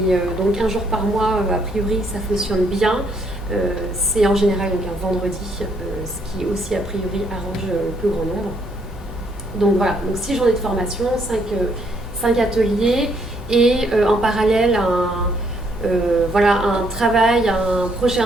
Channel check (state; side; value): normal; both; correlation 0.70